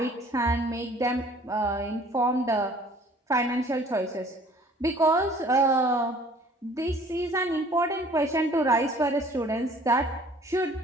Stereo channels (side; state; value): both; normal; correlation 0.53